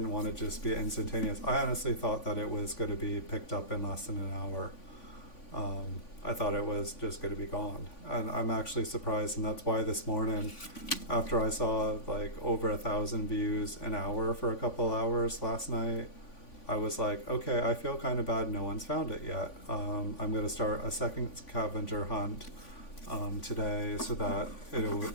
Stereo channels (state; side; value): late; right; 3.5 ms